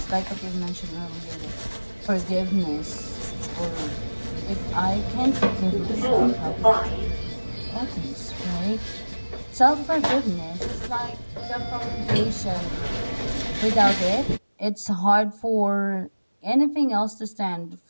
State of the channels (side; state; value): both; inverted; correlation -1.00